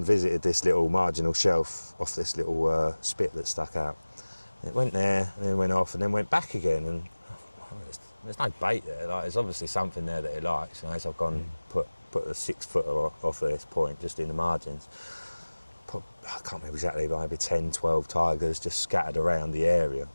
visited this little marginal shelf off this little spit that stuck out. And it went there, and then went off, and then went back again. And there's no bait there. Like, there's obviously something there that it likes. You know, so I've gone and put a 6 footer off of this point, just in the margins. I can't remember exactly, but maybe 10, 12 tigers just scattered around the area.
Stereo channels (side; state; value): both; inverted; correlation -1.00